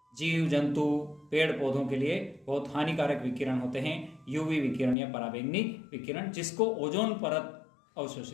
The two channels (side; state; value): right; drops out; at 5.0 s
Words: जीव जंतु पेड़ पौधों के लिए बहुत हानिकारक विकिरण होते हैं यूवी विकिरण या पराबैंगनी विकिरण, जिसको ओजोन परत